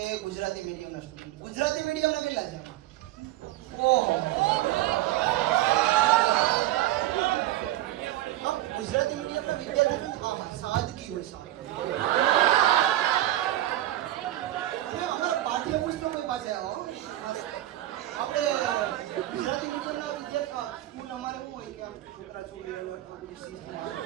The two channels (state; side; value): quieter; left; 15.0 dB